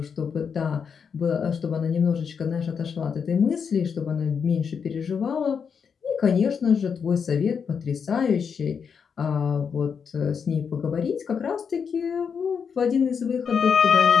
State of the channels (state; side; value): quieter; right; 6.5 dB